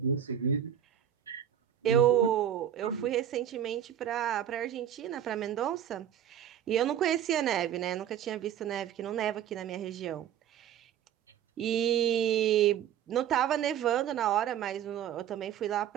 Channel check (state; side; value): quieter; left; 9.9 dB